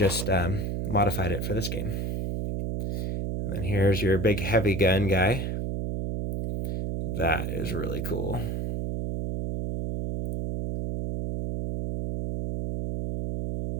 modified it for this game. And then here's your big heavy gun guy. That is really cool.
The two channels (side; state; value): right; noise; hum, 2 dB below the sound